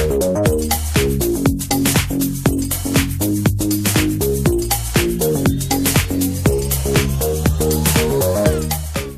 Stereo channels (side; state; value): both; identical; correlation 1.00